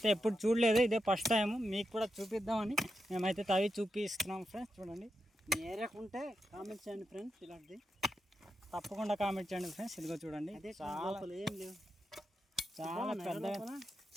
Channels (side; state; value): both; normal; correlation 0.87